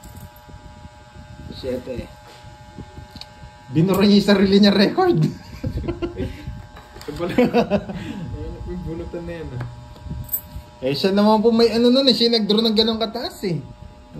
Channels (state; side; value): identical; both; correlation 1.00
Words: 7. Binura niya yung sarili niya record. Ito pala. May bunutan na yan. Eh siya naman po may ano nun eh. Siya nag-draw ng ganong kataas eh.